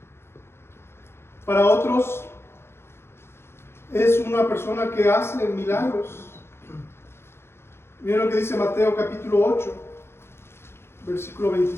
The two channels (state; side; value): late; right; 0.12 ms